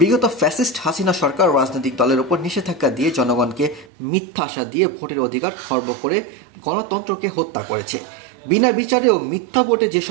ফ্যাসিস্ট হাসিনা সরকার রাজনৈতিক দলের উপর নিষেধাজ্ঞা দিয়ে জনগণকে মিথ্যা আশা দিয়ে ভোটের অধিকার খর্ব করে গণতন্ত্রকে হত্যা করেছে। বিনা বিচারে ও মিথ্যা ভোটে যে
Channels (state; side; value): drops out; left; at 3.9 s